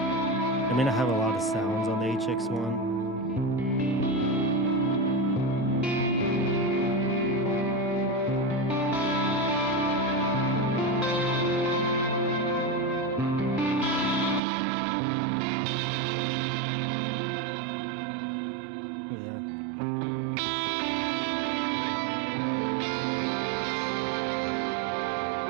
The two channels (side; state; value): left; drops out; at 14.4 s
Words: mean, I have a lot of sounds on the HX1. Yeah.